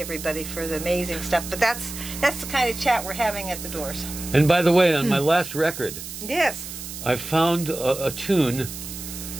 for the amazing stuff. But that's the kind of chat we're having at the doors. And by the way, on my last record, Yes. I found a tune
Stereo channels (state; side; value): noise; right; hiss, 10 dB below the sound